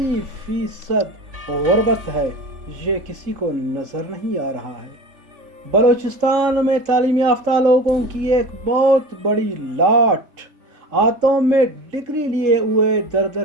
गुर्बत है, ये किसी को नजर नहीं आ रहा है। बलोचिस्तान में तालीम याफ्ता लोगों की एक बहुत बड़ी लाट हाथों में डिग्री लिए हुए दर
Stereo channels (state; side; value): late; left; 3.7 ms